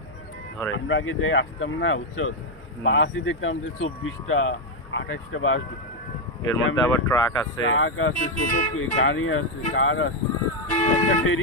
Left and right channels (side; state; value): both; normal; correlation 0.03